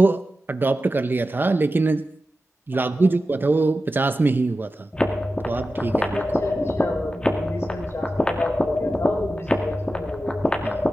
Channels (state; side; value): normal; both; correlation 0.92